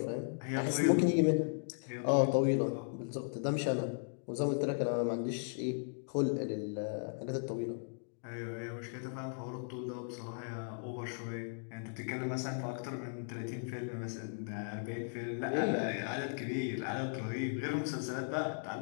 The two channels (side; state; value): right; silent; digital silence